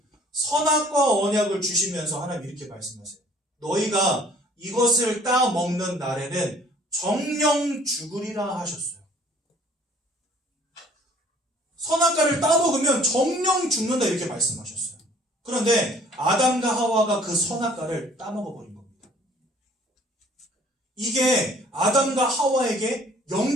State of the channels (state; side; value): normal; both; correlation 0.55